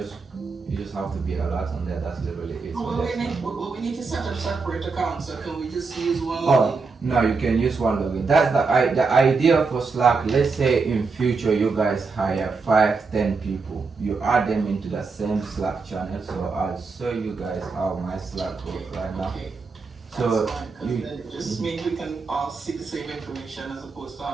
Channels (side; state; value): left; quieter; 4.5 dB